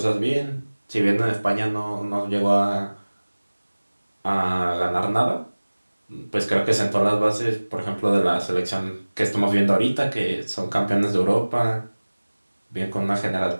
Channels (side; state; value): both; inverted; correlation -1.00